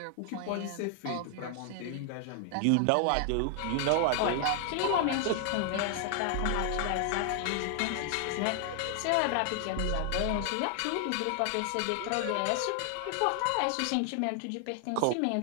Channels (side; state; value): both; different; correlation 0.00